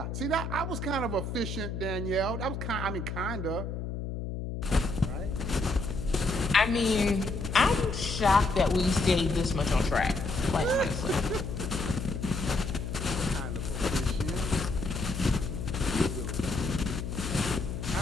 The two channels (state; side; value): noise; left; hum, 5 dB below the sound